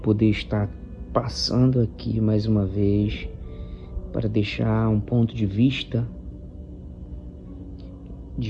estar passando aqui mais uma vez para deixar um ponto de vista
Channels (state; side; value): identical; both; correlation 1.00